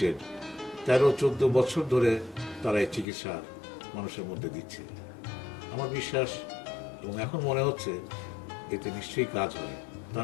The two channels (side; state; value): right; drops out; at 3.1 s